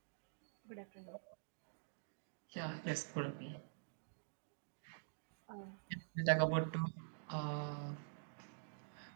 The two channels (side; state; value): left; silent; digital silence